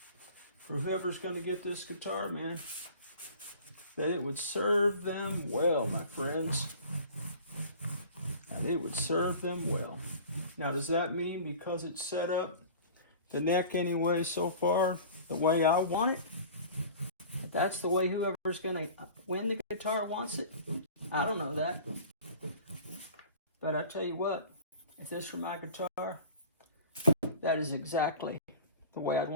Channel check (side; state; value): both; inverted; correlation -0.42